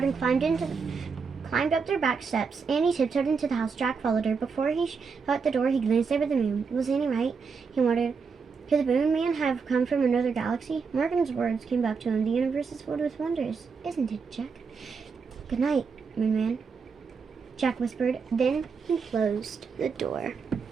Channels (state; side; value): quieter; left; 5.3 dB